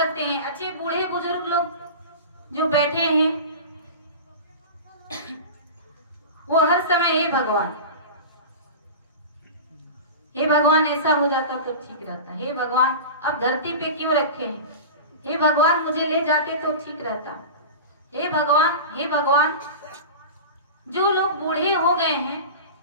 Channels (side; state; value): both; inverted; correlation -0.31